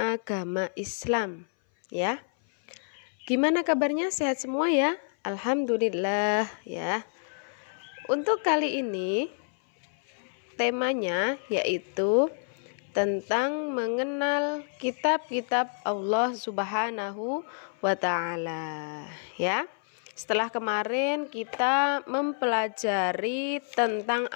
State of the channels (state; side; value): silent; right; 59 dB below the other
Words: Islam, ya. Gimana kabarnya? Sehat semua ya? Alhamdulillah ya. Untuk kali ini temanya yaitu tentang mengenal kitab-kitab Allah Subhanahu wa Ta'ala, ya. Setelah kemarin kita mempelajari tentang